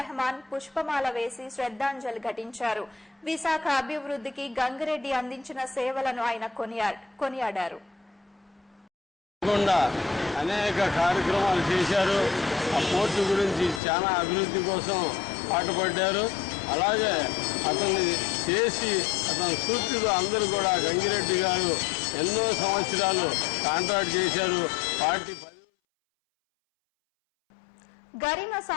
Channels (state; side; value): drops out; right; at 13.8 s